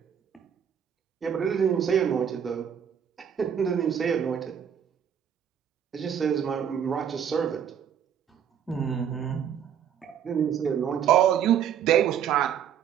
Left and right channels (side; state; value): left; quieter; 8.7 dB